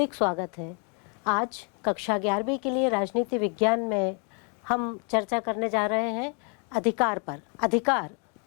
स्वागत है। आज कक्षा 11वीं के लिए राजनीति विज्ञान में हम चर्चा करने जा रहे हैं अधिकार पर। अधिकार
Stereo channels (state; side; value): quieter; right; 38.0 dB